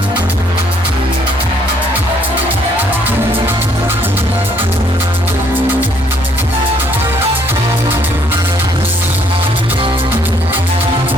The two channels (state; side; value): normal; both; correlation 0.66